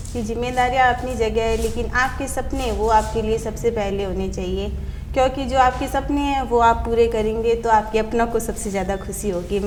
कि जिम्मेदारियाँ अपनी जगह है, लेकिन आपके सपने वो आपके लिए सबसे पहले होने चाहिए, क्योंकि जो आपके सपने हैं वो आप पूरे करेंगे तो आपके अपनों को सबसे ज़्यादा खुशी होगी,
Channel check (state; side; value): identical; both; correlation 1.00